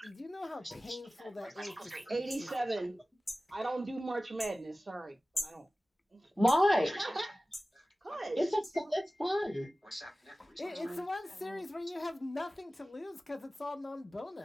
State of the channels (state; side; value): normal; both; correlation 0.96